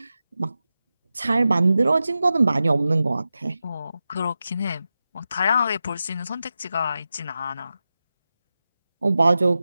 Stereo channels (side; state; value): both; inverted; correlation -0.92